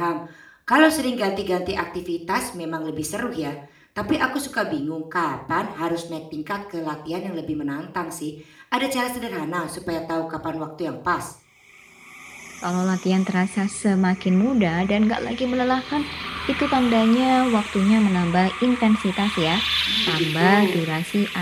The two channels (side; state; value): both; identical; correlation 1.00